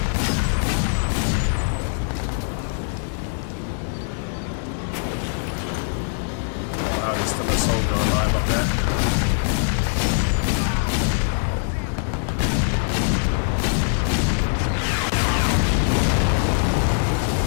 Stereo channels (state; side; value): silent; right; 64 dB below the other